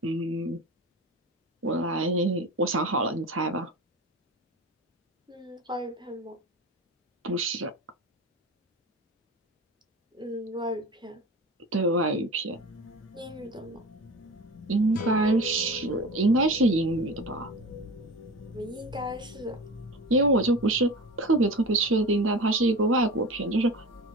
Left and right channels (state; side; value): normal; both; correlation 0.32